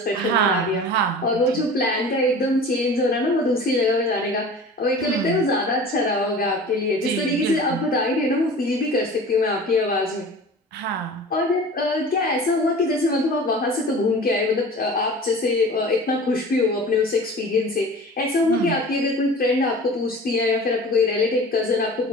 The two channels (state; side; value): normal; both; correlation 0.39